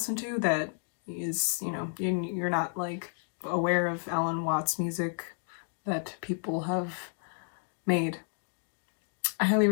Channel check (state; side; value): silent; right; 57 dB below the other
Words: to that is, you're not like aware of Alan Watts music that people have made, I highly